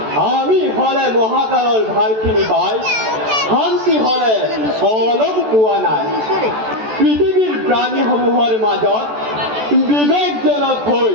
আমি হলে মহাকালৰ ভালখিনি পাই, শান্তি হলে অলপ পোৱা নাই। পৃথিৱীৰ প্ৰাণীসমূহৰ মাজত বিবেকজনক হৈ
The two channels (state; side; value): late; left; 14 ms